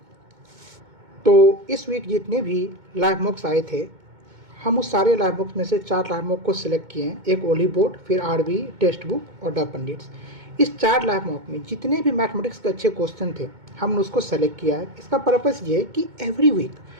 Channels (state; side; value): late; left; 2.2 ms